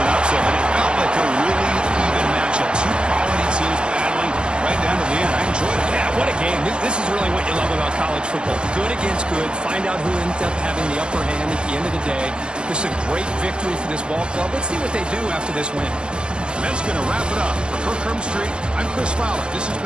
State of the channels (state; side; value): late; left; 0.054 ms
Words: upset, but it felt like a really even matchup. Two quality teams battling right down to the end. I enjoyed it. Yeah, what a game. This is really what you love about college football. Good against good. Find out who ends up having the upper hand at the end of the day. This is a great victory for this ball club. Let's see what they do after this win. And that's going to wrap it up. For Kirk Hermstreet, I'm Chris Fowler. This has